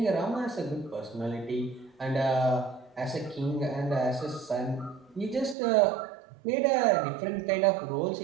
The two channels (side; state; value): left; drops out; at 5.6 s